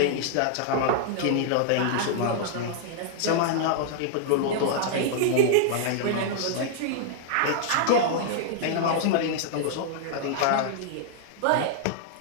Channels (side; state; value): both; different; correlation -0.01